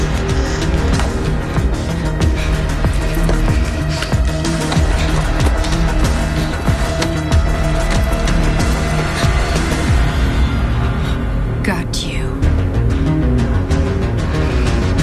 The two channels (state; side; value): identical; both; correlation 1.00